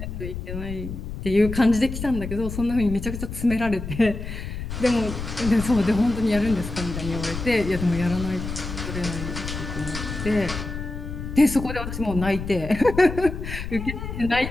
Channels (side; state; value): left; noise; rumble, 7 dB below the sound